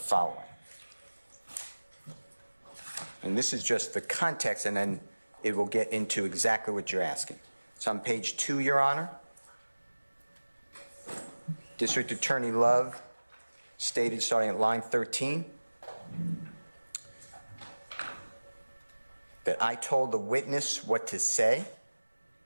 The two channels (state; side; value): inverted; both; correlation -1.00